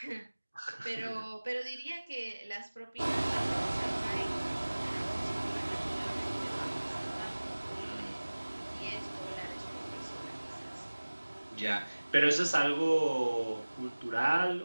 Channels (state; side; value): inverted; both; correlation -1.00